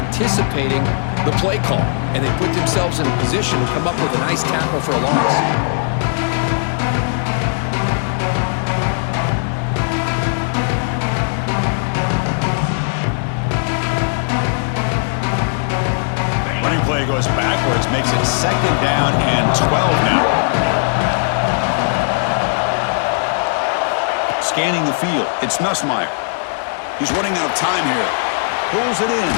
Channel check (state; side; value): silent; right; digital silence